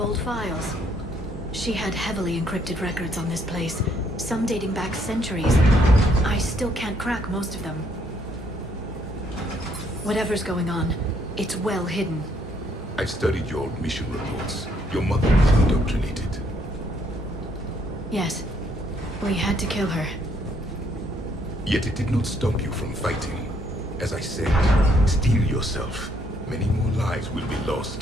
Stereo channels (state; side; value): normal; both; correlation 0.69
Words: files. She had heavily encrypted records on this place, some dating back centuries. I still can't crack most of them. Whatever's going on, it's well hidden. I've studied your old mission reports. Your mother was indoctrinated. Yes. We had to kill her. Yet it did not stop you from fighting. As I said, steel yourself. Many more lives will be